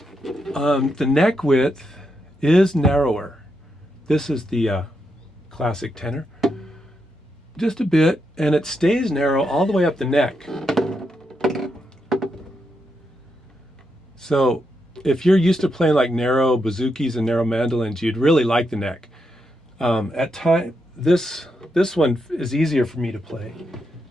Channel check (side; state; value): both; normal; correlation 0.83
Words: the neck width is narrower. This is the classic tenor. Just a bit, and it stays narrow all the way up the neck. So if you're used to playing like narrow bouzoukis and narrow mandolins, you'd really like the neck. At time, this one is easier for me to play.